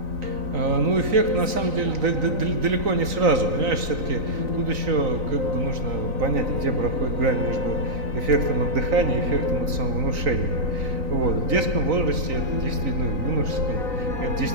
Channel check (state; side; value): late; left; 3.9 ms